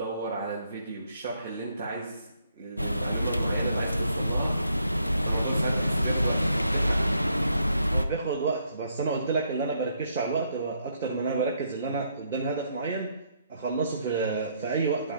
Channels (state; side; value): inverted; both; correlation -0.73